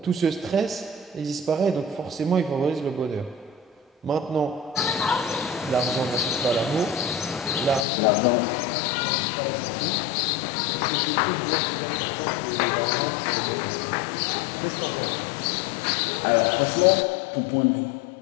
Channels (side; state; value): right; drops out; at 7.9 s